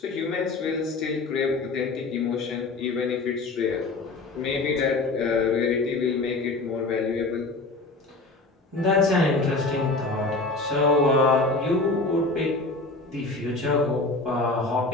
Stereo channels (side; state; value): right; quieter; 3.4 dB